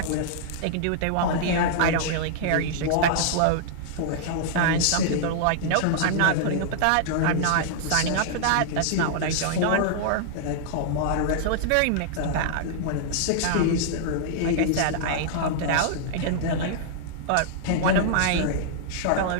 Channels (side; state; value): both; different; correlation -0.01